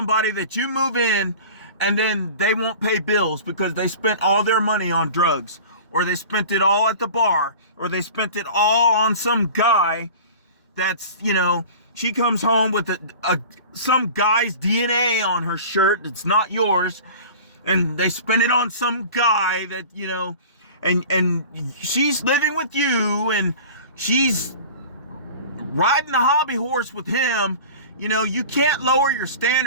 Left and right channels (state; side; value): inverted; both; correlation -0.39